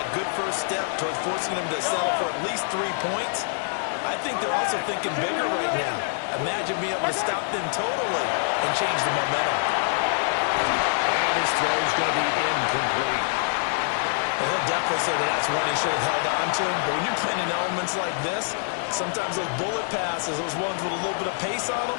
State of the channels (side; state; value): right; silent; digital silence